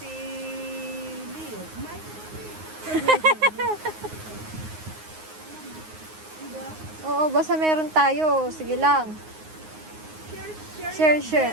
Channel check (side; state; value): left; late; 9.6 ms